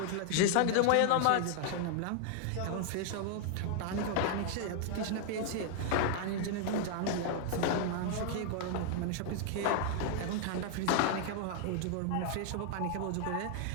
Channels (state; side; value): different; both; correlation 0.00